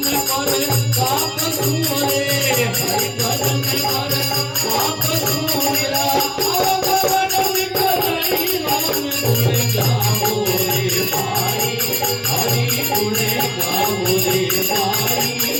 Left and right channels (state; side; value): identical; both; correlation 1.00